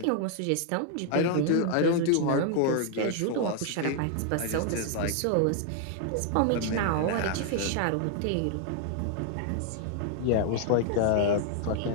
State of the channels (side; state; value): both; different; correlation 0.00